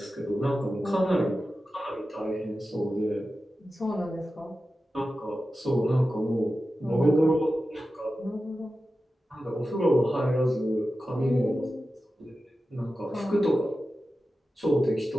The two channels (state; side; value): normal; both; correlation 0.93